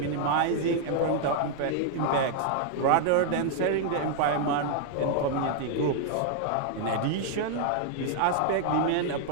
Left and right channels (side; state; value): both; different; correlation -0.01